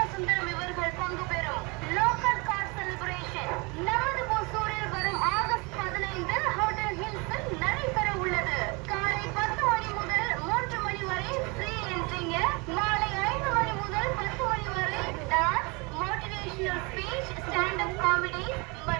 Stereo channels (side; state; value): left; quieter; 28.6 dB